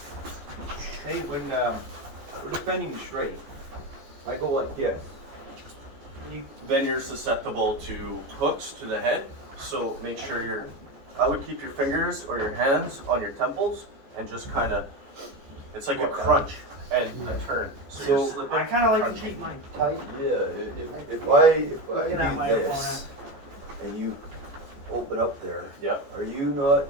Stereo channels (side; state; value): left; late; 14 ms